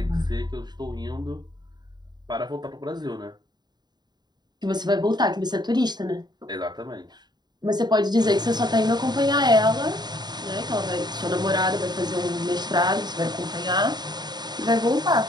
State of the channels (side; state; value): left; late; 0.20 ms